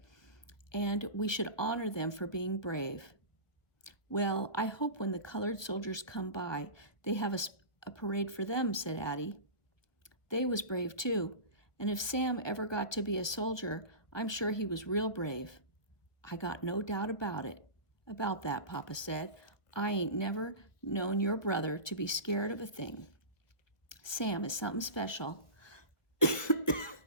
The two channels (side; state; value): right; late; 1.3 ms